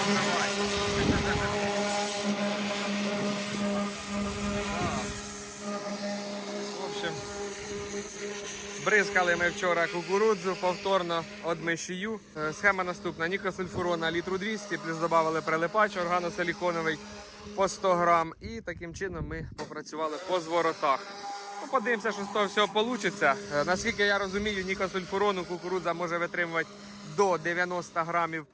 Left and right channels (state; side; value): identical; both; correlation 1.00